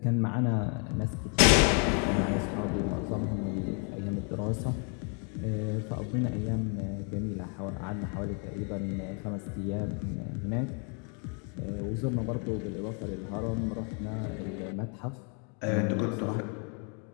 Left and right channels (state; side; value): quieter; right; 38.8 dB